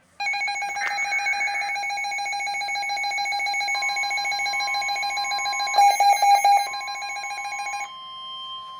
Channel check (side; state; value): both; identical; correlation 1.00